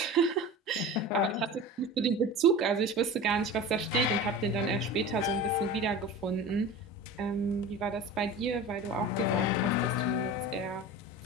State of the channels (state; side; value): normal; both; correlation 0.33